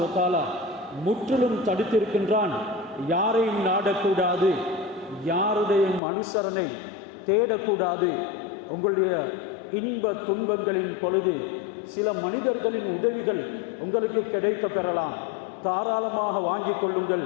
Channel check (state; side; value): drops out; right; at 6.0 s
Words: வ தஆலா முற்றிலும் தடுத்திருக்கின்றான். யாரையும் நாடக்கூடாது, யாருடைய அனுசரணை தேடக்கூடாது. உங்களுடைய இன்ப துன்பங்களின் பொழுது சில மனிதர்களின் உதவிகள் உங்களுக்கு கிடைக்க பெறலாம். தாராளமாக வாங்கிக்